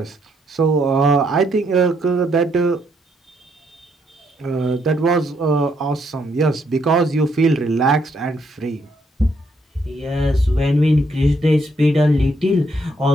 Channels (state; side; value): normal; both; correlation 0.73